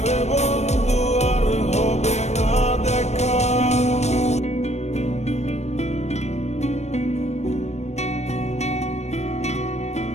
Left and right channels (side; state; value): right; late; 0.32 ms